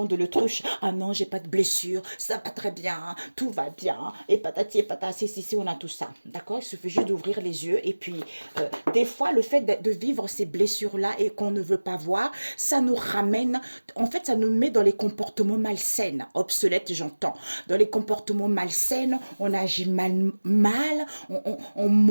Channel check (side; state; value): both; inverted; correlation -1.00